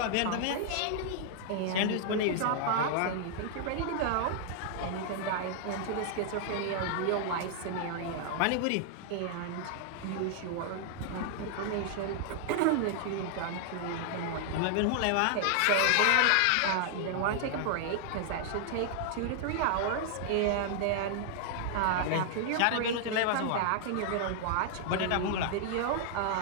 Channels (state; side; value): different; both; correlation -0.01